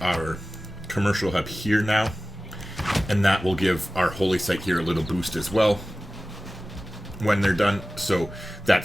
our commercial hub here now. And that will give our holy site here a little boost as well when they're done. So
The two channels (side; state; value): both; normal; correlation 0.96